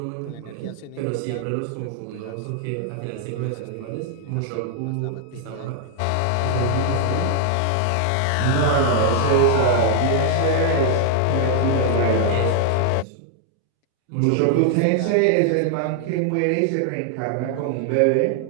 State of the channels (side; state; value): both; different; correlation 0.00